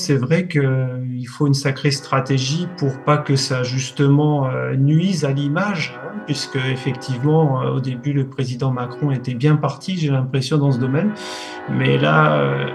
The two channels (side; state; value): both; identical; correlation 1.00